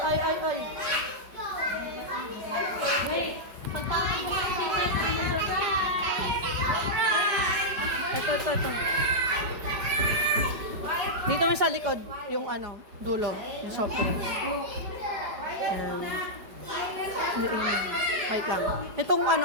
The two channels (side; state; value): left; late; 5.1 ms